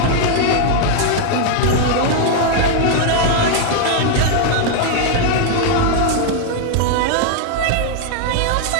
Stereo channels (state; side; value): different; both; correlation 0.00